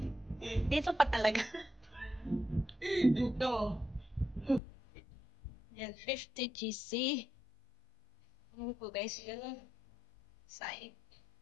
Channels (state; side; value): drops out; right; at 4.6 s